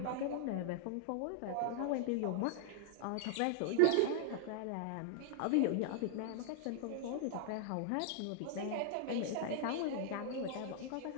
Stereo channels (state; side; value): different; both; correlation -0.01